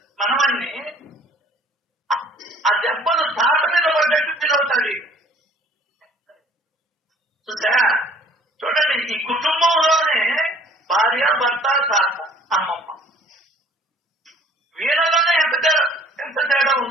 మనవన్ని ఆ దెబ్బలు తాత మీద పడ్డట్టు ఫీల్ అవుతాడు. చూసా? చూడండి, ఈ కుటుంబంలోనే భార్య, భర్త, తాత, అమ్మమ్మ, వీళ్ళలోనే ఎంత తేడా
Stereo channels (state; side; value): normal; both; correlation 0.53